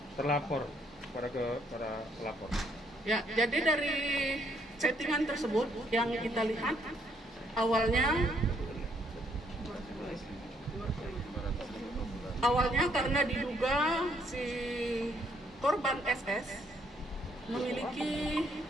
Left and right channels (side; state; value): both; normal; correlation 0.70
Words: terlapor para pelapor? Ya, jadi dari chattingan tersebut yang kita lihat awalnya karena diduga si korban SS memiliki